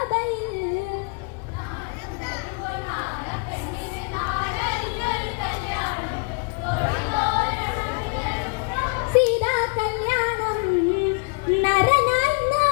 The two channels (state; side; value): quieter; right; 32.4 dB